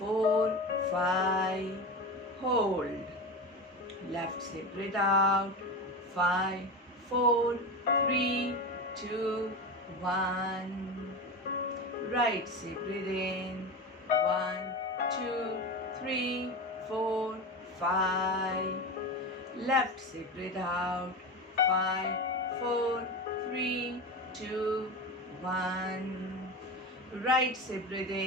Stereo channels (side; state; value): both; normal; correlation 0.24